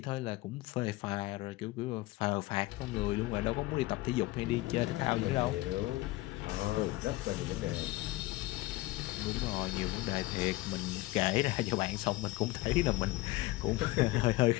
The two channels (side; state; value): right; quieter; 19.0 dB